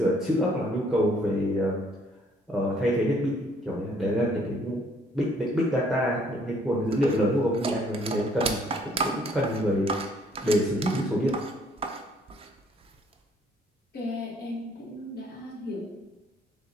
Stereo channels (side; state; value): both; normal; correlation 0.63